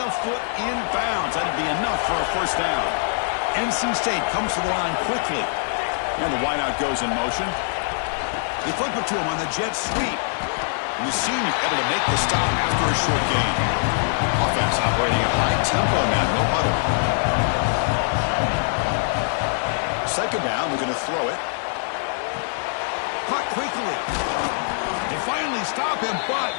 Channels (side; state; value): right; silent; digital silence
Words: foot in bounds. That'd be enough for a first down. NC State comes to the line quickly. And the wideout goes in motion. They flip it to him on the jet sweep. And the senior able to make the stop after a short gain. Offense operating at high tempo now. No huddle. 2nd down. They're going to throw it. Caught quickly. They finally stop him, but